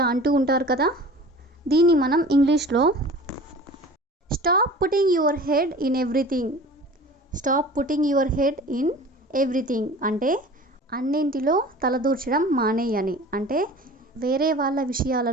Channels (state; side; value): normal; both; correlation 0.41